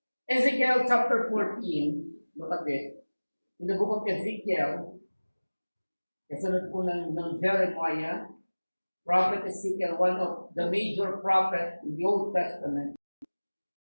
Ezekiel chapter 14, look at this. In the book of Ezekiel, kasunod po ng Jeremiah, Prophet Ezekiel, one of the major prophets in the Old Testament.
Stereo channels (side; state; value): both; inverted; correlation -1.00